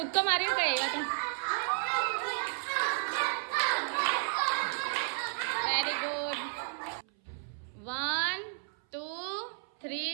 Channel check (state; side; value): silent; left; 56 dB below the other